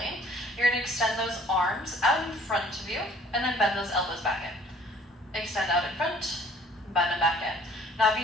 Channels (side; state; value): both; normal; correlation 0.55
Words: You're going to extend those arms out in front of you, and then bend those elbows back in. Extend out in front, bend them back in. Now if